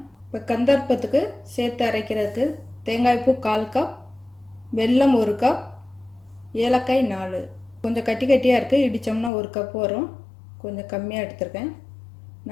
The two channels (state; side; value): drops out; right; at 9.3 s